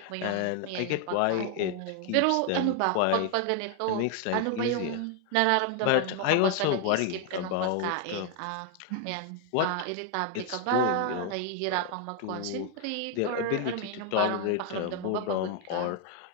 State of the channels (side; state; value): both; different; correlation 0.01